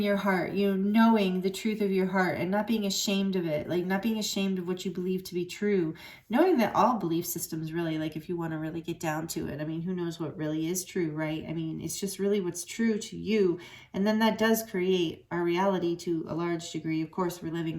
your heart, you know, knowing the truth of your heart and not being ashamed of it, like not being ashamed of what you believe to be true, knowing that all belief systems really, like if you want to really get down to it, I mean, who knows what really is true, right? I mean, it's just really what's true to you. And then that does create our reality to a large degree. Of course, we're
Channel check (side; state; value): both; identical; correlation 1.00